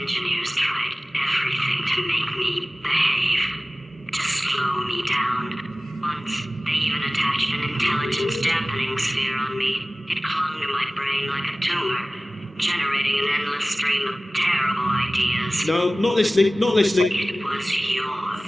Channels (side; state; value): both; normal; correlation 0.97